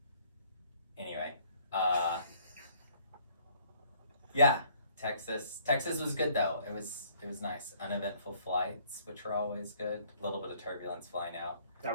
Anyway, yeah, Texas was good though. It was nice. Uneventful flights, which are always good. A little bit of turbulence flying out. That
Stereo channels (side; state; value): both; inverted; correlation -0.61